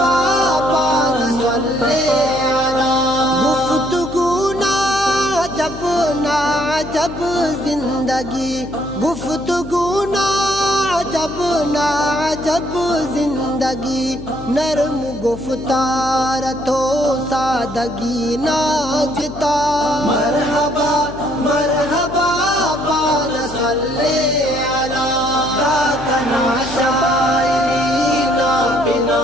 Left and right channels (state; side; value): noise; left; hum, 14 dB below the sound